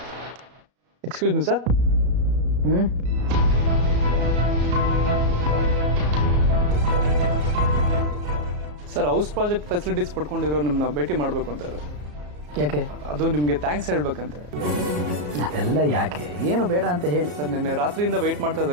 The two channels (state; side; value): late; left; 34 ms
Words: Excuse me sir. Sir, house project facilities ಪಡ್ಕೊಂಡಿರೋ ನಿಮ್ಮನ್ನ ಭೇಟಿ ಮಾಡಬೇಕು ಅಂತ ಇದ್ದಾರೆ. ಯಾಕೆ? ಅದು ನಿಮಗೆ ಥ್ಯಾಂಕ್ಸ್ ಹೇಳ್ಬೇಕಂತ. ಅದೆಲ್ಲ ಯಾಕೆ? ಏನು ಬೇಡ ಅಂತ ಹೇಳಿ. ಸರ್, ನಿನ್ನೆ ರಾತ್ರಿಯಿಂದ ವೆಯ್ಟ್ ಮಾಡ್ತಾ